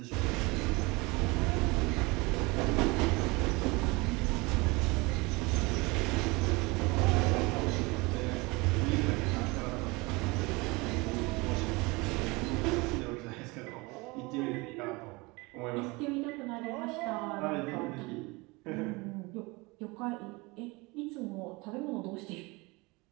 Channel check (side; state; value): left; quieter; 25.0 dB